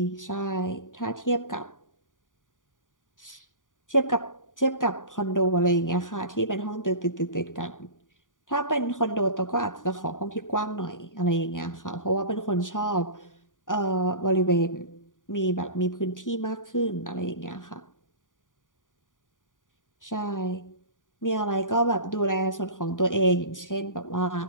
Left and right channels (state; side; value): late; right; 0.88 ms